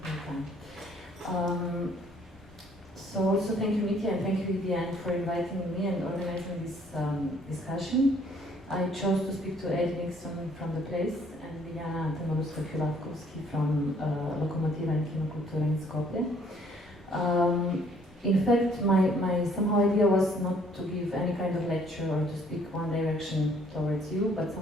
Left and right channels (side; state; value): both; normal; correlation 0.62